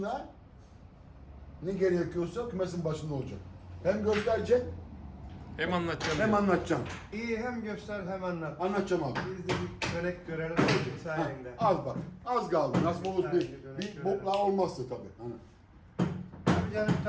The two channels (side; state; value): both; identical; correlation 1.00